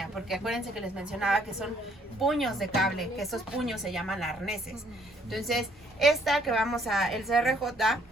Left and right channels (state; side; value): normal; both; correlation 0.65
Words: porque acuérdense que les mencionaba que son puños de cable, que esos puños se llaman arneses. Entonces, esta que vamos a, el CRJ,